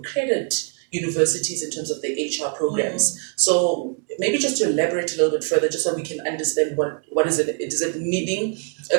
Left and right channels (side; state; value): left; quieter; 36.6 dB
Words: universities in terms of the HR programs. So maybe just to elaborate a little bit further, just so we can understand what is it? Is it meaning